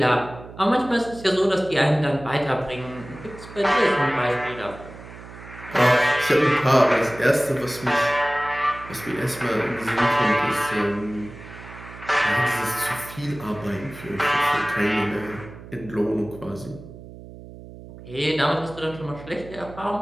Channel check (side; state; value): right; noise; hum, 16 dB below the sound